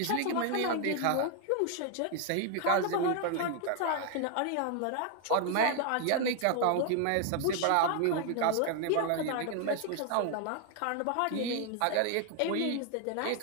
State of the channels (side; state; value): both; different; correlation 0.00